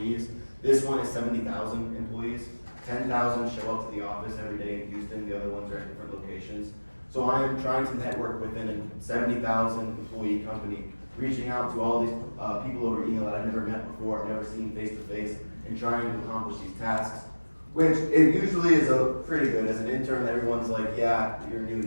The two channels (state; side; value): inverted; both; correlation -1.00